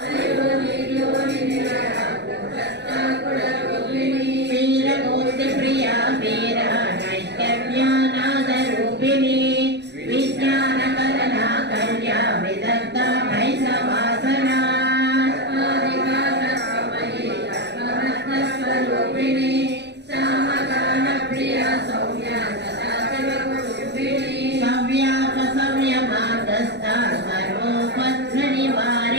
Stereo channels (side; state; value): left; late; 0.50 ms